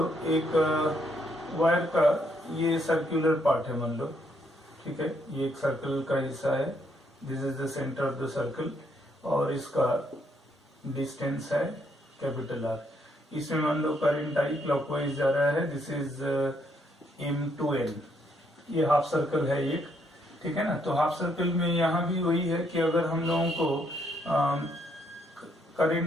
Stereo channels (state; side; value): normal; both; correlation 0.73